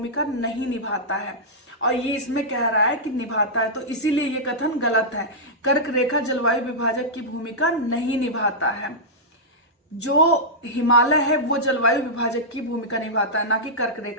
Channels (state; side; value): normal; both; correlation -0.10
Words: नहीं निभाता है। और ये इसमें कह रहा है कि निभाता है, तो इसीलिए ये कथन गलत है। कर्क रेखा जलवायु विभाजक की भूमिका नहीं निभाता है। जो हिमालय है वो जलवायु विभाजक की भूमिका निभाता है, ना कि कर्क